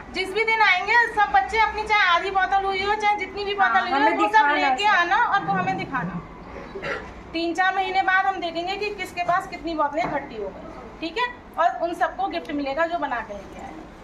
जिस भी दिन आएंगे सब बच्चे अपनी चाहे आधी बोतल हुई हो चाहे जितनी भी बोतल हुई हो वो सब लेके आना और वो हमें दिखाना। 3-4 महीने बाद हम देखेंगे कि किसके पास कितनी बोतलें इकट्ठी हो गई, ठीक है, और उन सबको गिफ्ट मिलेगा जो बना के लेके आए,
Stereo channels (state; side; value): identical; both; correlation 1.00